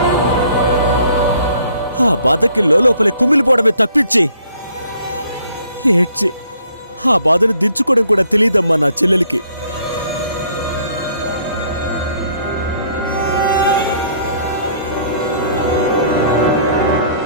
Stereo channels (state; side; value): inverted; both; correlation -0.62